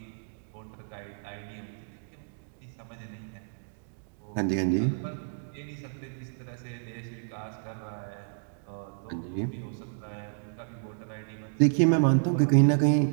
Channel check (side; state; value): left; silent; digital silence